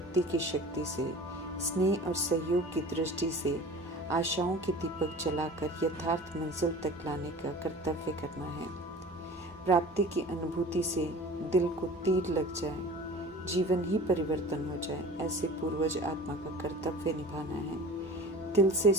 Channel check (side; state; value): both; normal; correlation 0.40